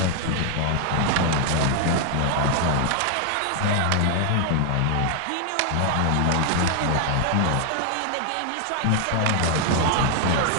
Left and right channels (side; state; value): both; different; correlation 0.00